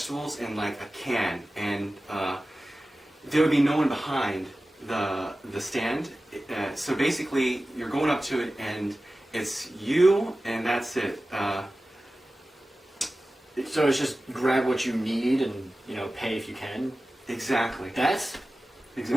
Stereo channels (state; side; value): normal; both; correlation 0.96